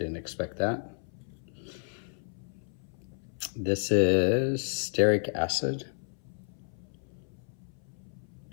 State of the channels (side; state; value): right; silent; 57 dB below the other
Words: expect that. This is stearic acid.